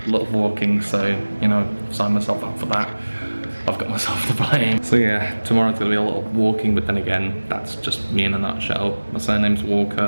a lot of walking, so you know, sign myself up for that. I've got myself to blame. So yeah, tomorrow's gonna be a lot of walking, but then again, that's just me in a nutshell. My surname's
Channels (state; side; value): inverted; both; correlation -1.00